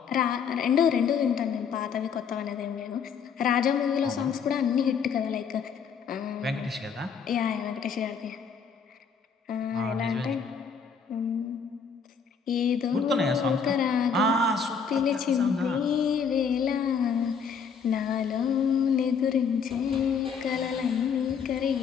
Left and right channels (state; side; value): quieter; right; 6.3 dB